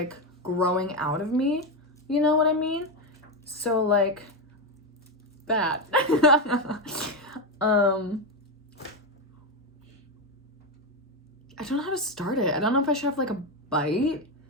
growing out of me. You know what I mean? So like that. I don't know how to start it. I don't know if I should have like a bite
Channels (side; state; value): both; normal; correlation 0.11